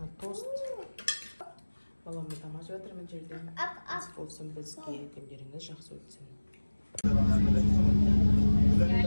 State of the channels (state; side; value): inverted; both; correlation -1.00